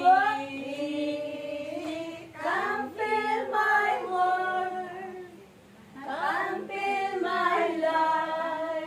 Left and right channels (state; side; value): identical; both; correlation 1.00